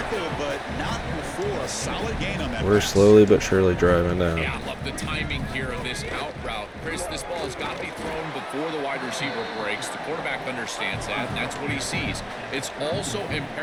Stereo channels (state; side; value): identical; both; correlation 1.00